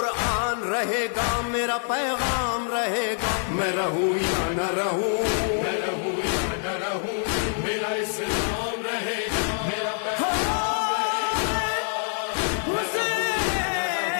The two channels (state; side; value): silent; right; digital silence